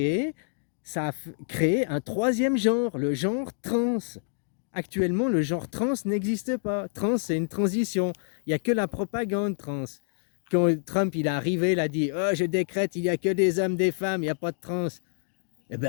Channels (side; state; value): right; silent; digital silence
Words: un troisième genre, le genre trans. Actuellement, le genre trans n'existe pas. Trans, c'est une transition. Il n'y a que la propagande trans. Quand Trump il est arrivé, il a dit oh, je décrète, il n'y a que des hommes, des femmes, il n'y a pas de trans. Eh